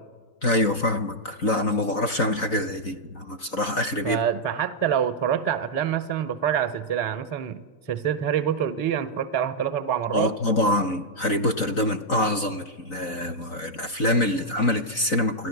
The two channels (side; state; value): right; late; 4.0 ms